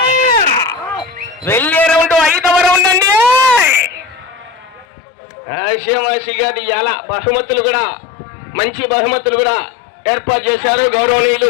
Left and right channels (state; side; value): drops out; right; at 4.9 s